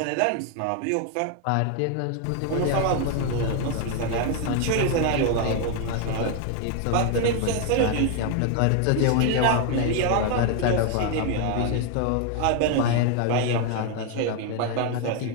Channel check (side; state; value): both; different; correlation 0.00